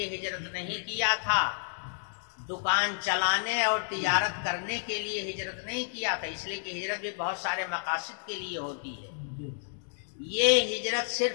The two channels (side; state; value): right; silent; digital silence